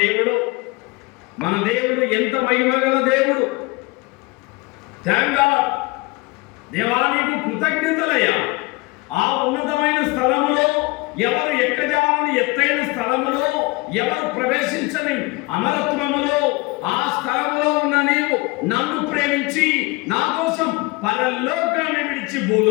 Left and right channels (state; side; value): quieter; right; 24.4 dB